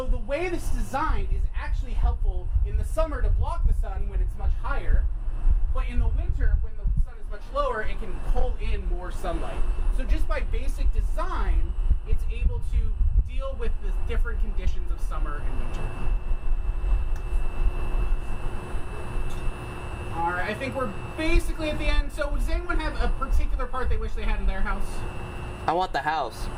the way this is designed is actually helpful in the summer to block the sun when it's much higher, but in the winter when the sun is much lower, it can pull in more sunlight. So just by basic design, it's able to deal with the different conditions of summer and winter. Alright, I think we're basically at the end. So does anyone have a particular part they wish they had in their house? I want the house.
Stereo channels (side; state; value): both; identical; correlation 1.00